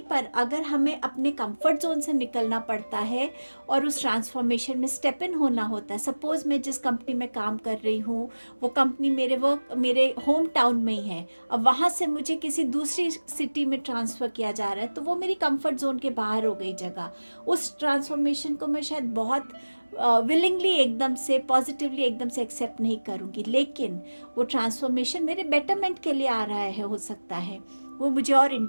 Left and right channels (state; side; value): inverted; both; correlation -1.00